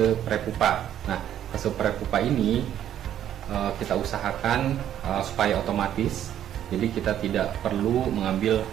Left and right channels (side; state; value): left; quieter; 10.8 dB